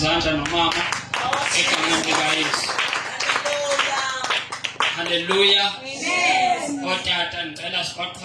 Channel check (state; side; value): identical; both; correlation 1.00